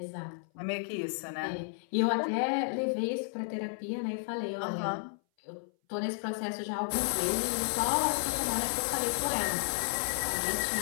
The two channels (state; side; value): silent; right; 56 dB below the other